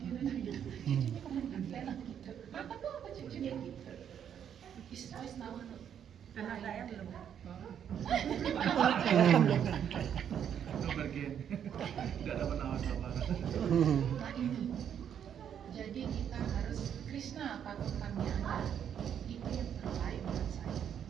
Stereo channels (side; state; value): left; quieter; 8.8 dB